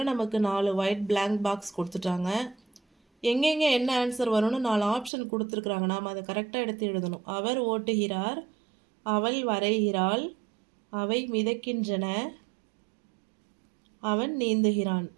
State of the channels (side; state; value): left; drops out; at 5.1 s